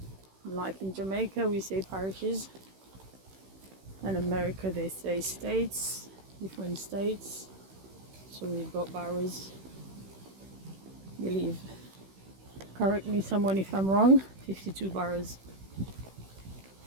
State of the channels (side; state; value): left; late; 16 ms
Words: Like in Jamaica, we say parishes. In America, they say states, different states. So we've got boroughs. I believe, correct me someone if I'm wrong, 52 boroughs.